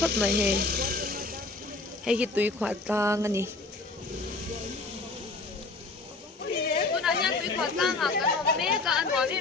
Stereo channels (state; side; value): quieter; right; 3.5 dB